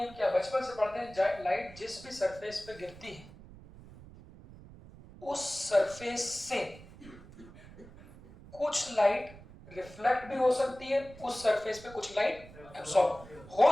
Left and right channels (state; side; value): noise; right; rumble, 19 dB below the sound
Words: क्या, बचपन से पढ़ते हैं लाइट जिस भी सरफेस पे गिरती है उस सरफेस से कुछ लाइट रिफ्लेक्ट भी हो सकती है, उस सरफेस पे कुछ लाइट एब्सॉर्ब